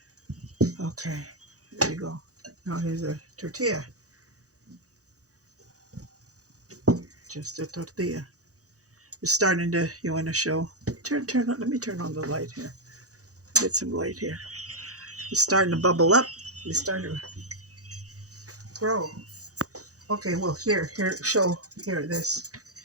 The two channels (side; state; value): left; late; 0.66 ms